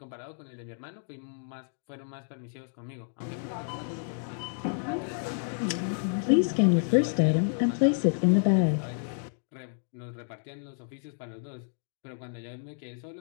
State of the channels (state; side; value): silent; right; digital silence